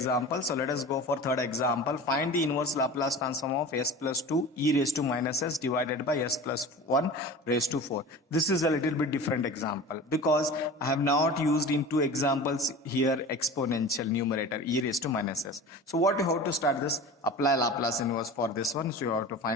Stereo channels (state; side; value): normal; both; correlation 0.36